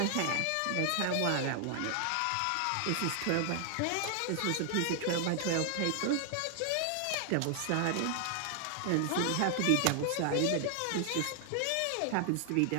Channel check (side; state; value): both; different; correlation 0.00